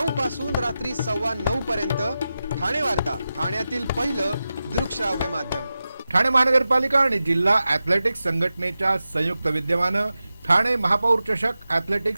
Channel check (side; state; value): both; inverted; correlation -0.93